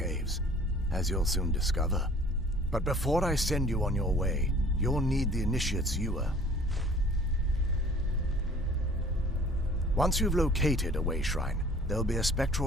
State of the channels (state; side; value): normal; both; correlation 0.51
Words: as you'll soon discover. But before I send you on your way, you'll need the initiate's ewer. Once you've located a way shrine, there'll be a